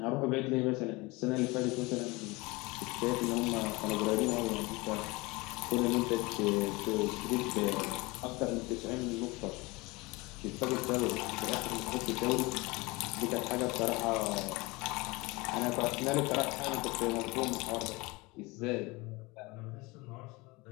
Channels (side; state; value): right; quieter; 24.0 dB